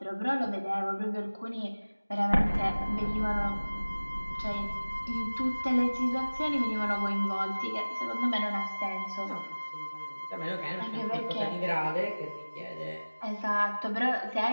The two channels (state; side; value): inverted; both; correlation -1.00